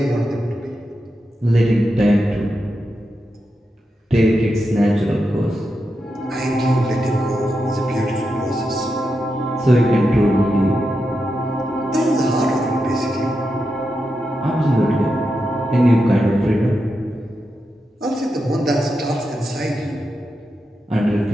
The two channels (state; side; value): normal; both; correlation 0.87